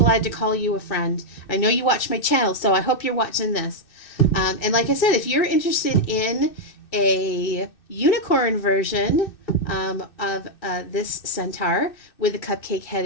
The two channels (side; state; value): right; late; 2.6 ms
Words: to call you a friend. I know you watch my channel, so I hope you're watching this. And like I said, if you're interested in a unicorn version of this centaur with a cupcake head